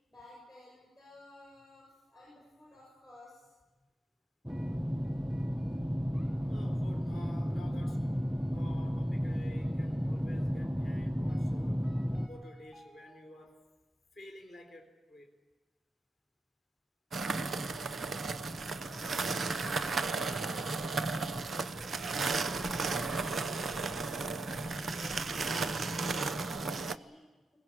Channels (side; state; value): both; normal; correlation 0.89